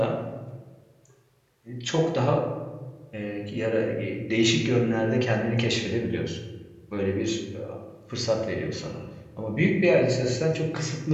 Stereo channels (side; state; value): both; identical; correlation 1.00